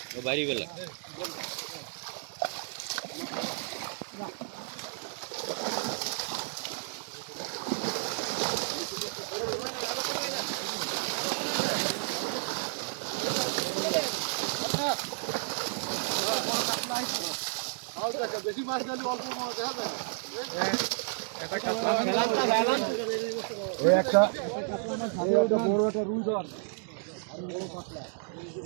বাড়ি বেলা বেশি মাছ দিলে অল্প মাছ দেখা যায় একটা বড় একটা রুই ধর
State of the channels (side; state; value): left; silent; digital silence